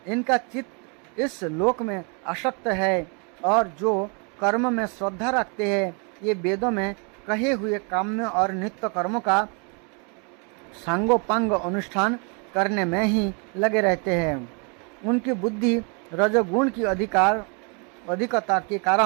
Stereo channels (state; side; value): quieter; left; 35.3 dB